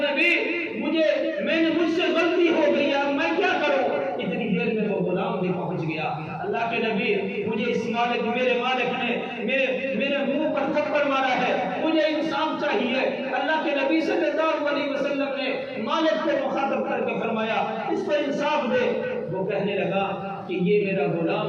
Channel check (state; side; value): identical; both; correlation 1.00